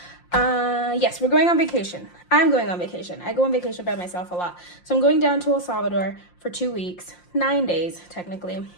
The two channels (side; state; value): right; late; 5.7 ms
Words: Yes, we're going on vacation. I'm going on vacation. I go on vacation by myself a lot. So I'm going down to El Salvador for 2 weeks, 9 days technically.